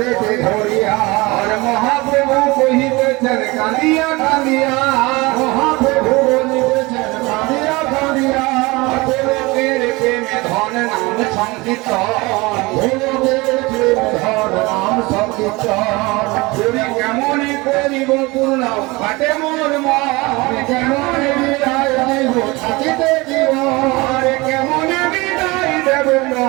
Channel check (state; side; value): quieter; left; 23.5 dB